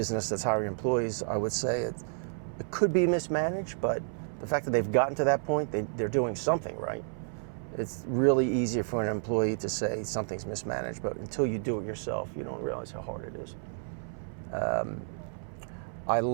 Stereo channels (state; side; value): silent; left; 57 dB below the other